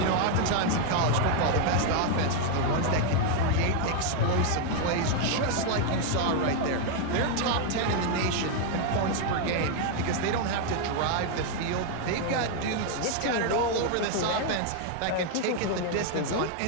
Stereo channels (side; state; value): both; different; correlation 0.00